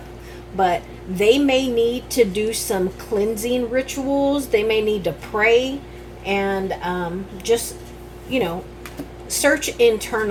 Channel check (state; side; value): identical; both; correlation 1.00